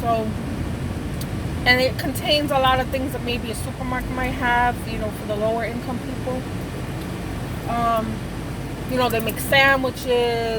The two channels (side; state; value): both; identical; correlation 1.00